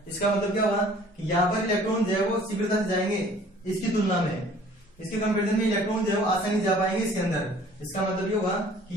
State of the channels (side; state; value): both; normal; correlation 0.52